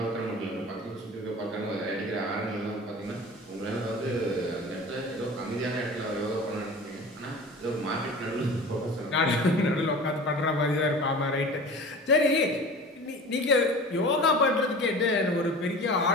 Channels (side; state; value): both; normal; correlation 0.38